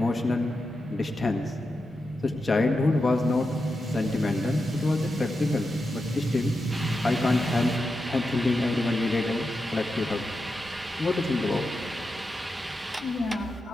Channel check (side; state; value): both; normal; correlation 0.89